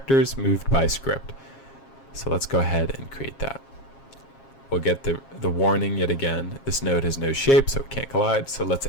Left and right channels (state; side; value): late; right; 7.4 ms